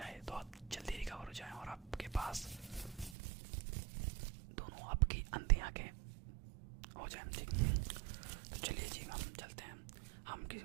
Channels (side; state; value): left; drops out; at 3.2 s